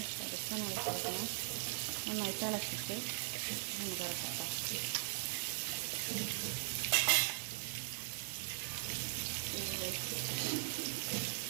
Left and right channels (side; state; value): left; silent; digital silence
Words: ജസ്റ്റൊന്ന് ഇളക്കി കൊടുക്കണം. നന്നായിട്ട് ഇളക്കിയിട്ട് നമുക്ക് ഇറക്കാം.